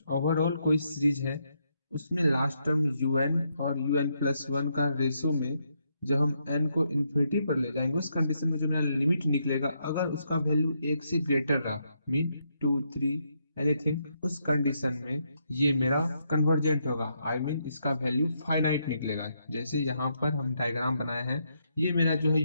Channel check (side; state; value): both; inverted; correlation -0.78